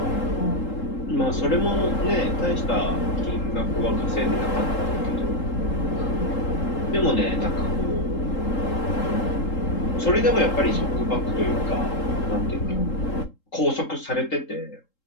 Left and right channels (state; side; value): late; right; 3.8 ms